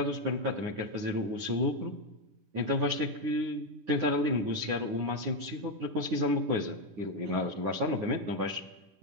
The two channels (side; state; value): left; late; 10 ms